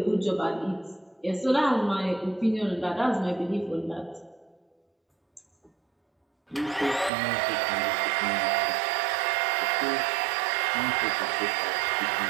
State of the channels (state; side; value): drops out; left; at 7.1 s